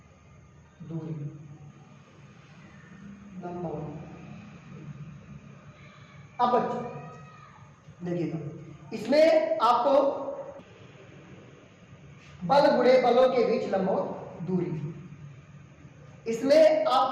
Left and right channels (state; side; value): identical; both; correlation 1.00